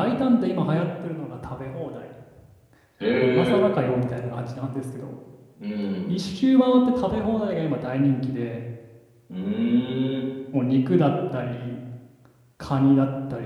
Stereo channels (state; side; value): identical; both; correlation 1.00